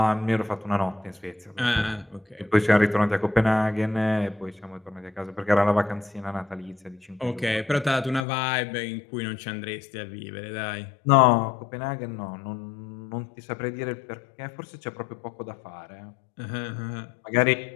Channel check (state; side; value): drops out; right; at 8.2 s